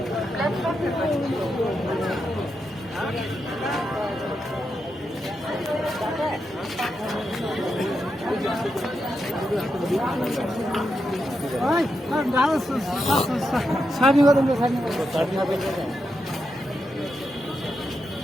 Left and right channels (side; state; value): both; normal; correlation 0.85